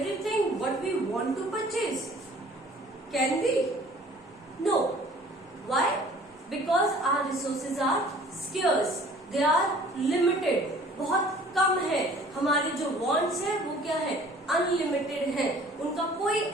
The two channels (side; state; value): both; normal; correlation 0.51